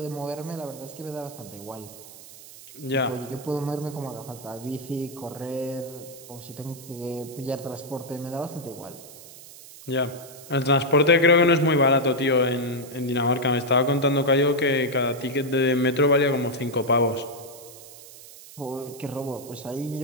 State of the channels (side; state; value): right; noise; hiss, 18 dB below the sound